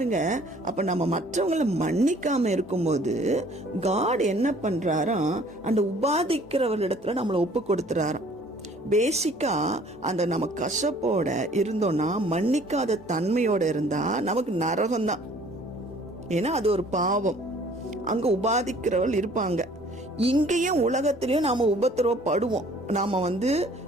அப்ப நம்ம மற்றவங்களை மன்னிக்காம இருக்கும்போது காட் என்ன பண்றாராம், அந்த உபாதிக்கிறவர்களிடத்துல நம்மளை ஒப்பு கொடுத்துறாராம். பேசிக்கா அந்த நம்ம கசப்போட இருந்தோம்னா, மன்னிக்காத தன்மையோட இருந்தா நமக்கு நரகம்தான். ஏன்னா அது ஒரு பாவம். அங்க உபாதிக்கிறவர்கள் இருப்பாங்க. இங்கேயும் உலகத்திலயும் நாம உபத்திரவப்படுவோம். நாம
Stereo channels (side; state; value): both; normal; correlation 0.55